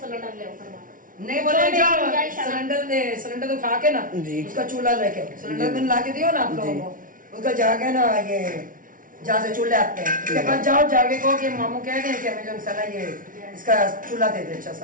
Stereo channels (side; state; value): left; late; 0.39 ms